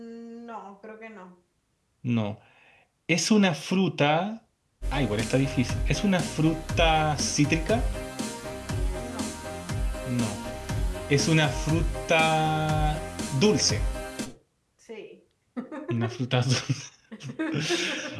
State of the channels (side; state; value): both; identical; correlation 1.00